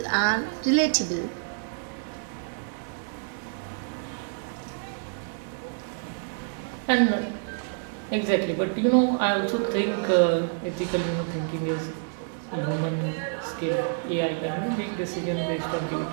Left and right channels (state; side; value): silent; left; digital silence